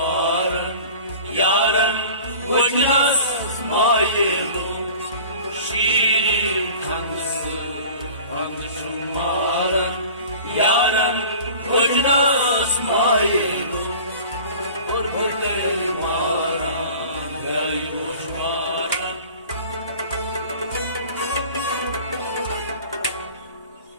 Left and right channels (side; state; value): both; inverted; correlation -0.42